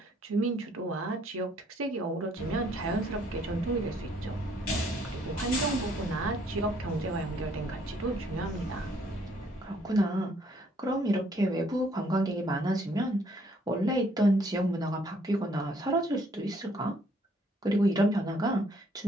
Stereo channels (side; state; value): both; normal; correlation 0.65